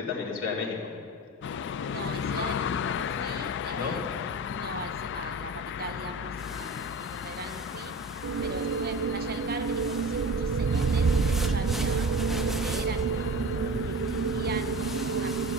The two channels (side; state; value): both; normal; correlation 0.32